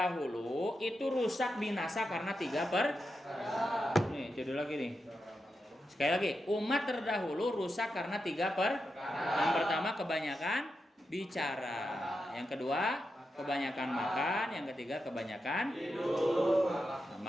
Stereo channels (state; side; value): normal; both; correlation 0.88